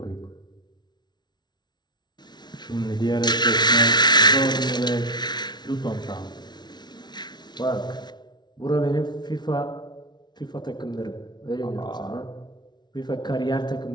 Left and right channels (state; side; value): late; right; 0.20 ms